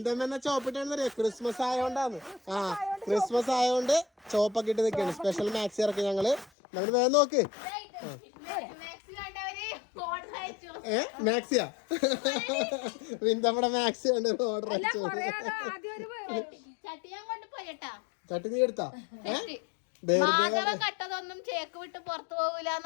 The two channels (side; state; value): right; drops out; at 6.5 s